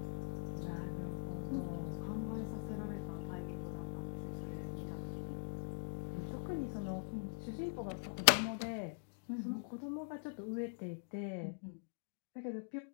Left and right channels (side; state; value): right; silent; digital silence